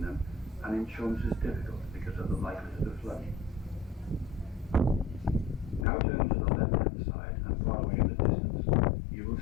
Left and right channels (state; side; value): drops out; right; at 5.9 s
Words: them and insurance is difficult because of the likelihood of flooding. Now turn to the left-hand side and far away in the distance, you will